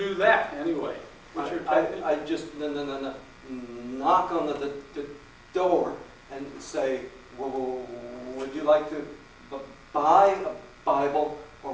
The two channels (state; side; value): identical; both; correlation 1.00